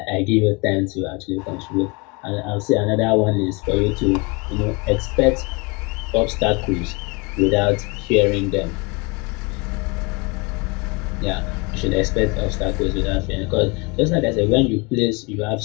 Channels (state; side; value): quieter; right; 28.6 dB